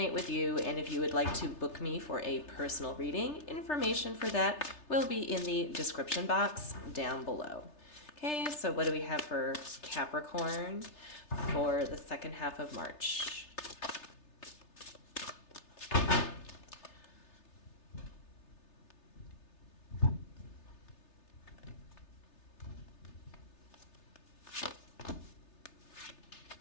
with you, and if you would like to book me for a personal reading, information for that will be in the description box down below. Okay, so what do we have for Capricorn for the second half of March?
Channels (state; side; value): late; right; 3.3 ms